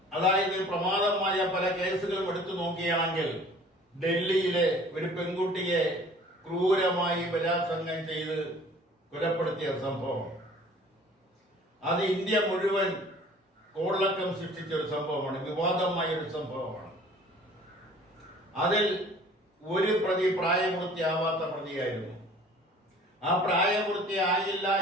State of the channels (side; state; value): both; normal; correlation 0.50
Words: അതായത് പ്രമാദമായ പല കേസുകളും എടുത്തു നോക്കുകയാണെങ്കിൽ ഡൽഹിയിലെ ഒരു പെൺകുട്ടിയെ ക്രൂരമായി ബലാത്സംഗം ചെയ്ത് കൊലപ്പെടുത്തിയ സംഭവം, അത് ഇന്ത്യ മുഴുവൻ കോളിളക്കം സൃഷ്ടിച്ച ഒരു സംഭവമാണ്, വിവാദമായ ഒരു സംഭവമാണ്. അതിൽ ഒരു പ്രതി പ്രായപൂർത്തിയാവാത്ത പ്രതിയായിരുന്നു. ആ പ്രായപൂർത്തിയായില്ല